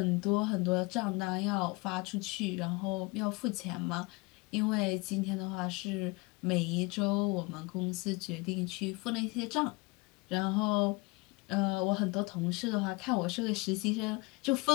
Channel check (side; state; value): right; quieter; 25.8 dB